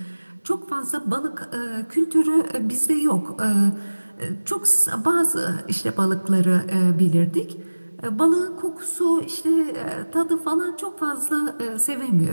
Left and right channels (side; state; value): both; inverted; correlation -1.00